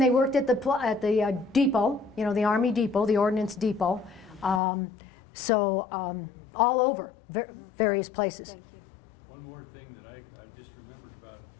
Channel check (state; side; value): drops out; right; at 4.6 s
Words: they worked at the depot, you know, the Army depot, the Ordnance depot. So, all over, various places. One more thing that I just remembered about